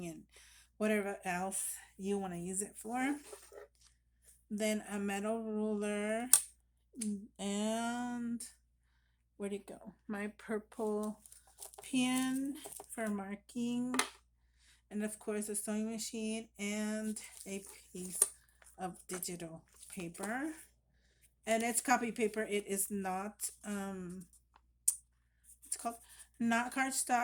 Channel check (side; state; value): both; identical; correlation 1.00